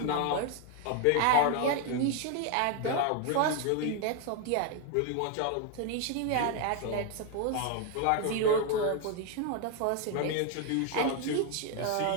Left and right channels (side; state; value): both; different; correlation 0.01